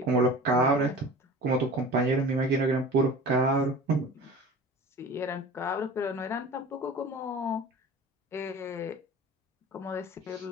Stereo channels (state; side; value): normal; both; correlation 0.38